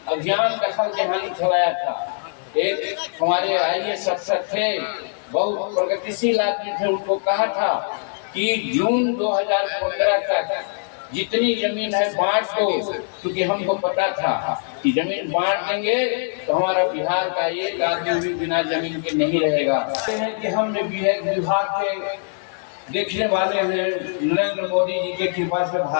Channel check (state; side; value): silent; right; digital silence